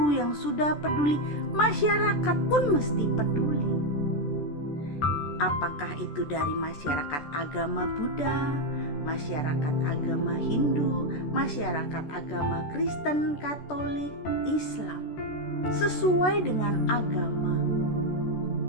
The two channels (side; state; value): right; late; 14 ms